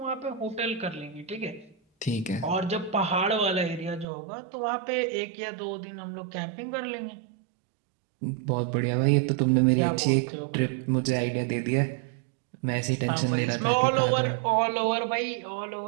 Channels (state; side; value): drops out; left; at 4.0 s